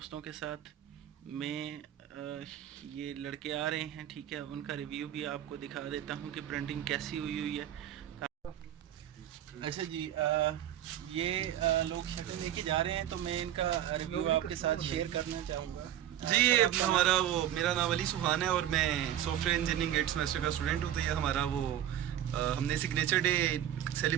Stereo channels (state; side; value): quieter; left; 11.3 dB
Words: के साथ। मैं ये लड़के आ रहे हैं, ठीक है, उनका रिव्यू भी आपको दिखा देता हूँ कि प्रिंटिंग कैसी हुई हुई है। अच्छा जी, ये लोग शर्टें लेके जा रहे हैं, तो मैं इनका रिव्यू आपके साथ शेयर करना चाहूँगा। जी, सर, ये आपका नाम? हमारा वो मेरा नाम अली सुहान है और मैं सॉफ्टवेयर इंजीनियरिंग 8 सेमेस्टर का स्टूडेंट हूँ। तो ये हमारा वो हमने सिग्नेचर डे